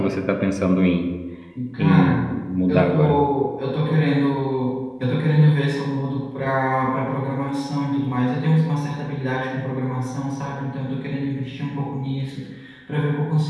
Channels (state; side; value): identical; both; correlation 1.00